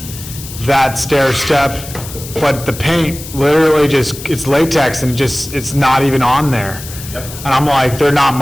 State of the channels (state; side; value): noise; left; hiss, 13 dB below the sound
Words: that stair step, but the paint literally it's latex and it's not even on there. Yep. And I'm like, they're not